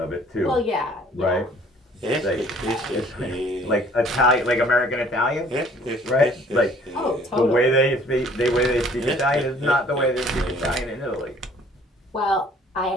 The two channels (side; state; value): both; normal; correlation 0.56